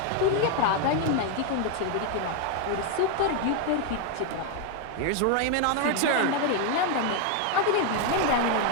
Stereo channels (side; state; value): both; different; correlation 0.01